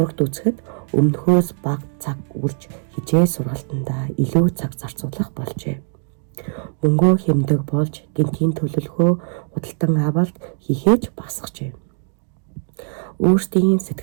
үзэхэд өмнөхөөс бага цаг үрж хичээл сургалтандаа илүү цаг зарцуулах болжээ. Мөнгөө хэмдэг болж гэнтийн төлөвлөгөө худалдан авалт хийхээж багасгажээ. Өөрсдийн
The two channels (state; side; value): silent; left; 65 dB below the other